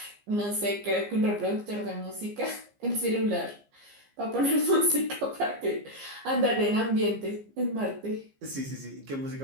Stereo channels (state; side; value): late; left; 15 ms